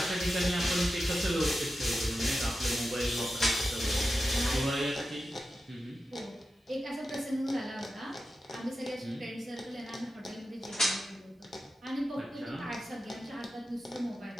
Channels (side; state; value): both; normal; correlation 0.91